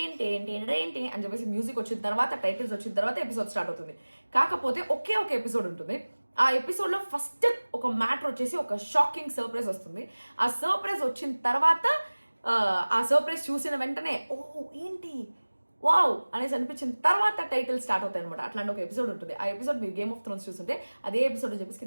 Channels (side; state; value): both; inverted; correlation -1.00